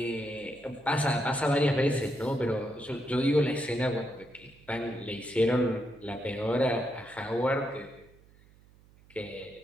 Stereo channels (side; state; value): right; noise; hum, 27 dB below the sound